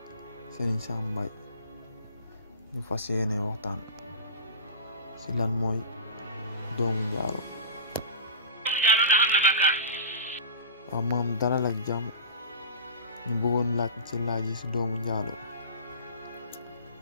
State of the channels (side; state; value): both; inverted; correlation -0.32